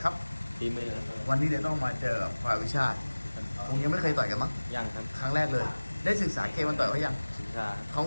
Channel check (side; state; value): both; inverted; correlation -1.00